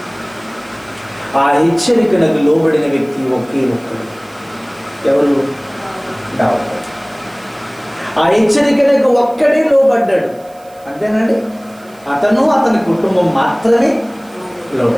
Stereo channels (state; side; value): noise; right; hiss, 27 dB below the sound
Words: ఆ హెచ్చరికలకు లోబడిన వ్యక్తి ఒకే ఒక్కడు. ఎవరు? దావీదు. ఆ హెచ్చరికలకు ఒక్కడే లోబడ్డాడు. అంతేనండి. అతని కుటుంబం మాత్రమే